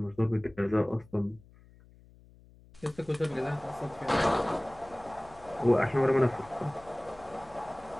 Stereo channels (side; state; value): left; noise; hum, 25 dB below the sound